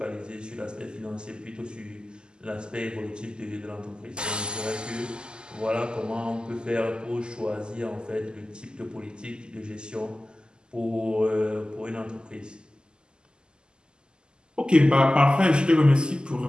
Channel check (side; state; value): left; late; 0.047 ms